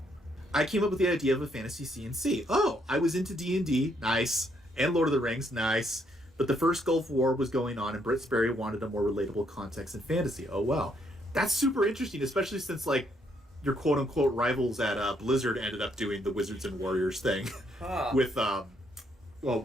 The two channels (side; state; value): both; normal; correlation 0.72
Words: I came up with the idea of a fantasy C&C. Oh, I was into D&D, nice, and Lord of the Rings, nice, but the first Gulf War was going on, and Britt Sperry wanted a more relatable context in fantasy. Oh, well. That's super interesting, especially since, like, your quote-unquote rivals at Blizzard ended up doing the Wizards and Warriors thing with,